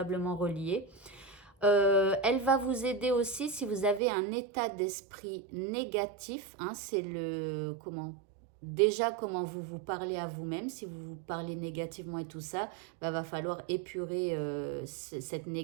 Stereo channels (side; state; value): left; drops out; at 4.0 s